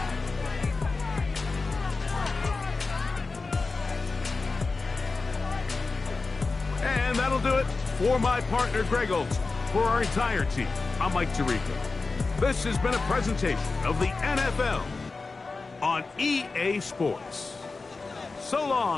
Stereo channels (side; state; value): right; quieter; 3.9 dB